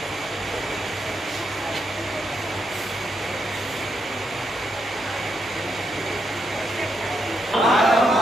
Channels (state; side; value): normal; both; correlation 0.81